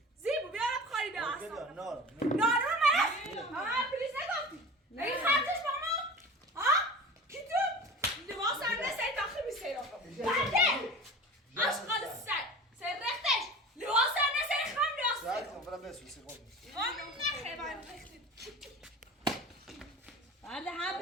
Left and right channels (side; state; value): both; normal; correlation 0.36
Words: زیبو بیا بخاری بیا اصلا نار نارو مرد ها پلیس نگفتی این خرچش با ما ها کی تو لباس هم نسایی داخل بیسی را بلده اشغال سر رختش لباس هم نسایی خام ساعت لباس کن فرام بسوسی خود خام نخه باید رختی بله هم